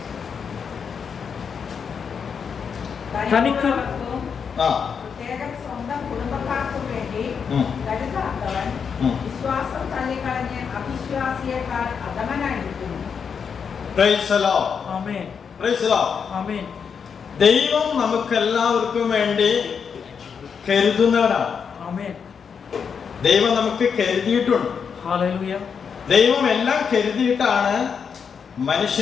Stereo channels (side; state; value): right; quieter; 6.5 dB